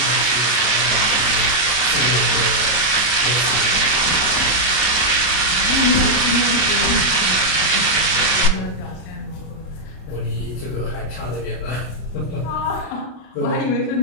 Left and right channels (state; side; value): late; right; 32 ms